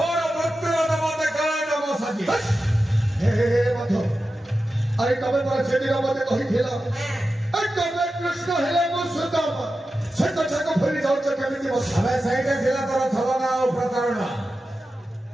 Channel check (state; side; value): normal; both; correlation 0.92